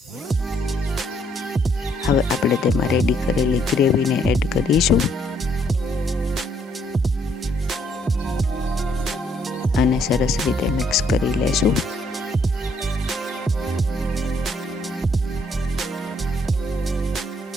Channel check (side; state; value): both; normal; correlation 0.69